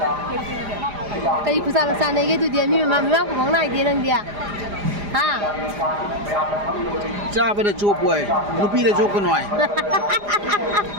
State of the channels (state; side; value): late; left; 4.9 ms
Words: ꯀꯔꯤ ꯈꯨꯆꯥ ꯆꯥꯅꯩꯒꯦ ꯑꯗꯨꯗꯤ ꯃꯤ ꯃꯃꯥꯡ ꯈꯨꯃꯪ ꯅꯥꯏꯗꯦ ꯅꯪꯗꯤ ꯍꯥ ꯆꯥꯕꯗ ꯆꯣꯞ ꯑꯣꯏ ꯅꯨꯄꯤꯗ ꯆꯣꯞꯀꯅꯨ ꯍꯥꯏ